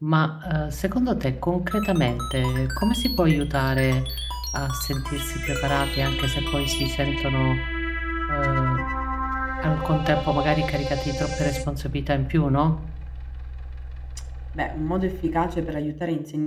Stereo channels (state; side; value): identical; both; correlation 1.00